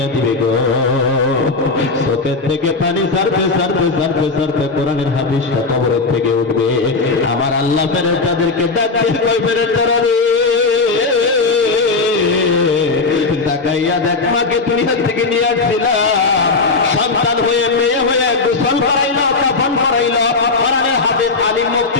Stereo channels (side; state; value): right; quieter; 4.0 dB